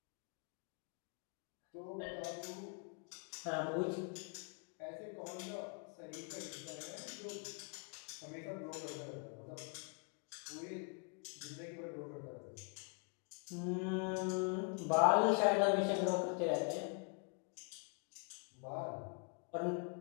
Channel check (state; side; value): quieter; right; 36.0 dB